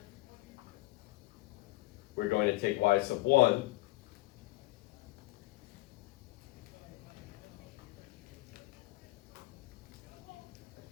we're going to take y sub 1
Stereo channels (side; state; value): right; quieter; 20.8 dB